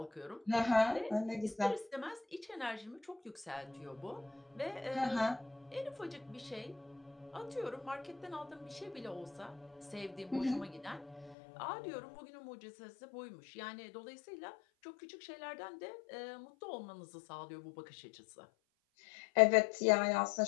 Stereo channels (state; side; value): drops out; right; at 11.4 s